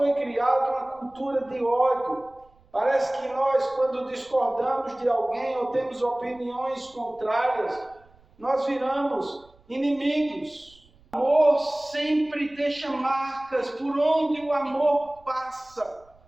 criada uma cultura de ódio. Parece que nós, quando discordamos de alguém ou temos opiniões contrárias, nós viramos inimigos. O amor sempre deixa marcas. Por onde o amor passa,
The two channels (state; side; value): noise; right; rumble, 29 dB below the sound